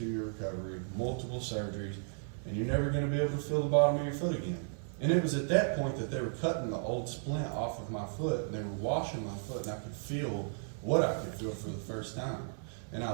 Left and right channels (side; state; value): left; silent; 55 dB below the other